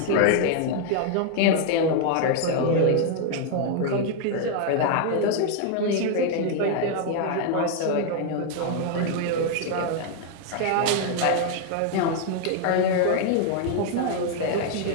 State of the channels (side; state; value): both; different; correlation 0.00